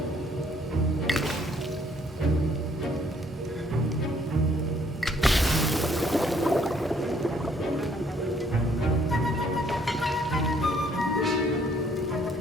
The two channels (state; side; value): normal; both; correlation 0.64